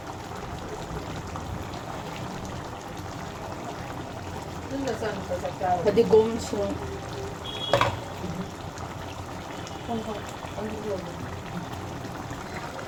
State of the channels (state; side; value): identical; both; correlation 1.00